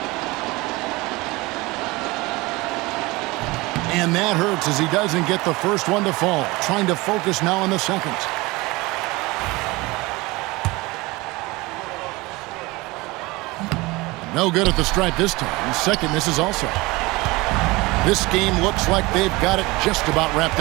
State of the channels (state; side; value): quieter; left; 22.4 dB